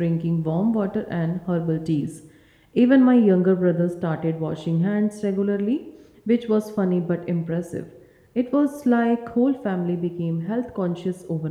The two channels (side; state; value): both; identical; correlation 1.00